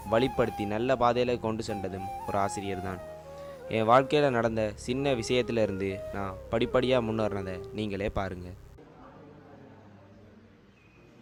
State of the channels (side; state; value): both; identical; correlation 1.00